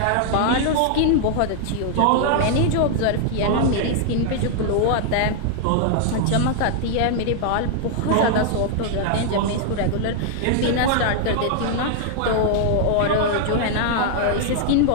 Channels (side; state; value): both; different; correlation 0.00